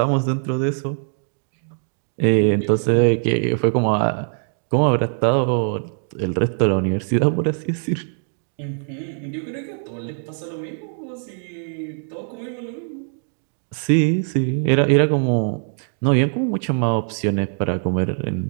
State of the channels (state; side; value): silent; left; 64 dB below the other